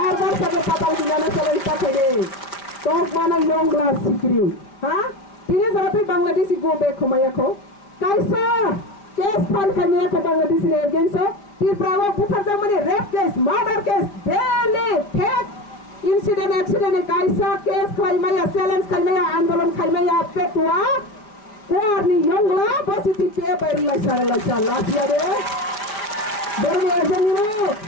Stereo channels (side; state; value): right; late; 4.9 ms